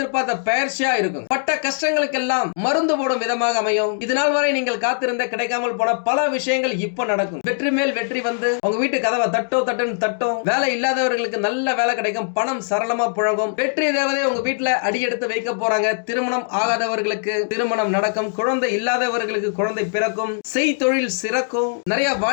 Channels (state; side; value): silent; right; digital silence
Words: பயிற்சியா இருக்கும். பட்ட கஷ்டங்களுக்கெல்லாம் மருந்து போடும் விதமாக அமையும். இதனால் வரை நீங்கள் காத்திருந்த கிடைக்காமல் போன பல விஷயங்கள் இப்ப நடக்கும். வெற்றி மேல் வெற்றி வந்து உங்க வீட்டு கதவை தட்டும். வேலை இல்லாதவர்களுக்கு நல்ல வேலை கிடைக்கும். பணம் சரளமா புழங்கும். வெற்றி தேவதை உங்க வீட்டுல அடியெடுத்து வைக்க போறாங்க. திருமணம் ஆகாதவர்களுக்கு திருமணம் நடக்கும். குழந்தை இல்லாதவர்களுக்கு குழந்தை பிறக்கும். செய் தொழில் சிறக்கும். நிறைய